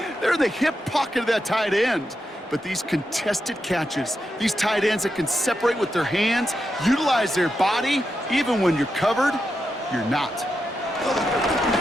They're in the hip pocket of that tight end. But these contested catches, these tight ends that can separate with their hands, utilize their body, even when you're covered, you're not.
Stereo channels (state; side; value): normal; both; correlation 0.86